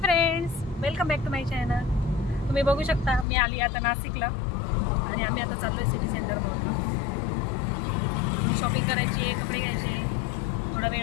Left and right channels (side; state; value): right; drops out; at 3.2 s